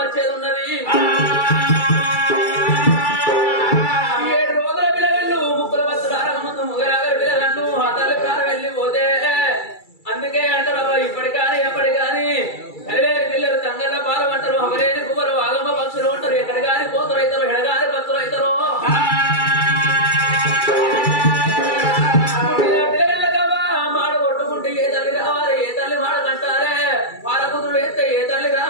వచ్చేది ఉన్నది 7 రోజుల పిల్లగళ్ళు ముక్కుల బస్సులార ముందు ముగరాగరి పిల్లగళ్ళు ఆ తల్లి ప్రాణం వెళ్ళిపోతే అందుకే అంటారు ఇప్పటి కానీ ఎప్పటి కానీ అరేని పిల్లలు తంగళ్ళ పాలం అంటారు అవరేని కువరు ఆగమ్మ పక్షులు అంటారు ఎక్కడ కానీ కోతులు అవుతారు ఎడగాని పక్షులు అవుతారు మాడ కొట్టుకుంటే ఏ తల్లి రావాలి ఏ తల్లి మాడ కంటారే పాలకుతుడు వేస్తే ఏ తల్లి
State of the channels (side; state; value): right; late; 2.3 ms